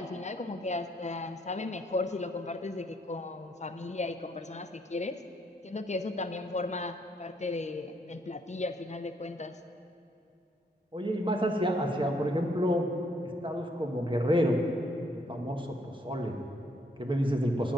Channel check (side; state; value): both; normal; correlation 0.70